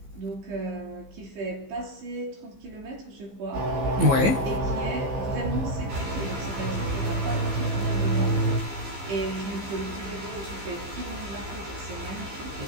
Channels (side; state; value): left; late; 15 ms